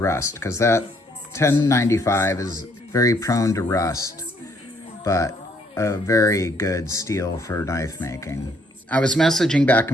because that 1095 is very prone to rust, but a very good steel for knife making. I was messaging back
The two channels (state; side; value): normal; both; correlation 0.67